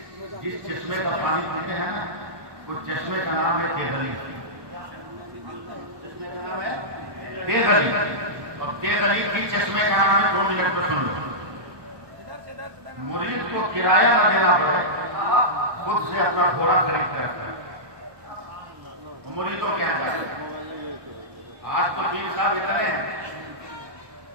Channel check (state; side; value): late; left; 1.2 ms